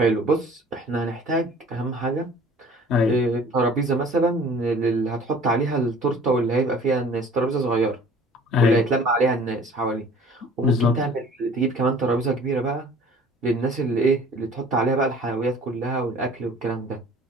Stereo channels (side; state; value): both; normal; correlation 0.49